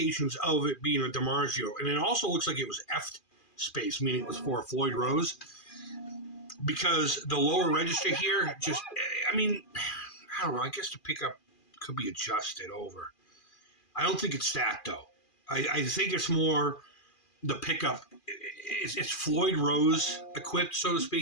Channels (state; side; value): late; right; 2.4 ms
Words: of it being a DiMarzio. And it also looks like it was F space, meaning it was for a Floyd Rose. Because the lower register here just, I mean, I don't know. I guess the pickup could be adjusted over. I don't think it's that, though. I think it's more the pickup. It's Floyd Rose equipped, so to